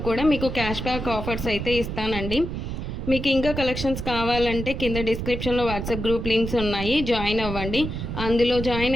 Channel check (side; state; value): right; noise; rumble, 5 dB below the sound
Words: కూడా మీకు క్యాష్ బ్యాక్ ఆఫర్స్ అయితే ఇస్తానండి. మీకు ఇంకా కలెక్షన్స్ కావాలంటే కింద డిస్క్రిప్షన్లో వాట్సాప్ గ్రూప్ లింక్స్ ఉన్నాయి, జాయిన్ అవ్వండి. అందులో